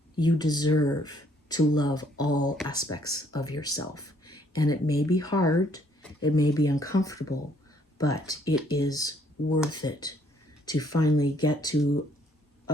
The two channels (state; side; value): normal; both; correlation 0.65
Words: You deserve to love all aspects of yourself. And it may be hard, it may be uncomfortable, but it is worth it to finally get to